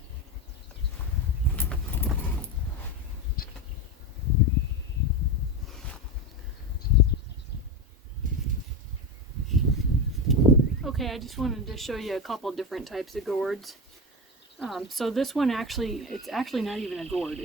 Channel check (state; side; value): normal; both; correlation 0.18